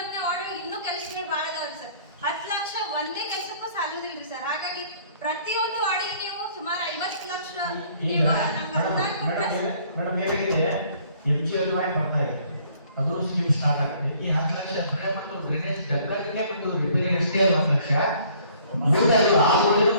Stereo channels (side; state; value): both; inverted; correlation -0.58